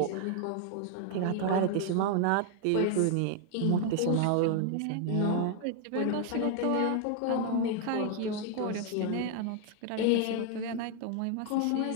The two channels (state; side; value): different; both; correlation 0.00